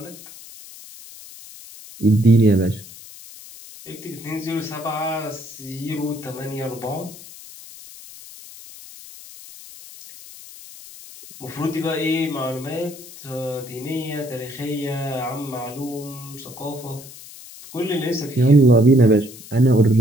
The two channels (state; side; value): noise; left; hiss, 17 dB below the sound